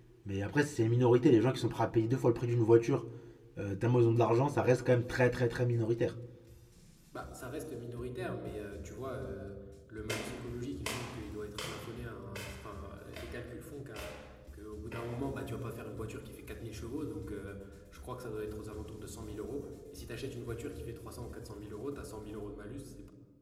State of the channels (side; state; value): both; identical; correlation 1.00